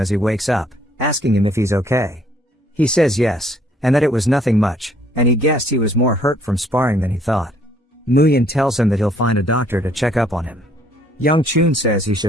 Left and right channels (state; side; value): normal; both; correlation 0.64